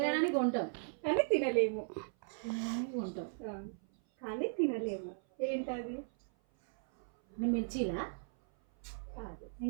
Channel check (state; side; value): silent; left; 53 dB below the other